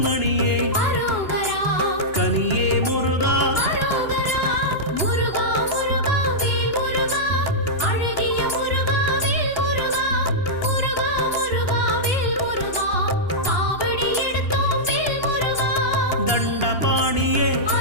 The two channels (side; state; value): right; late; 2.9 ms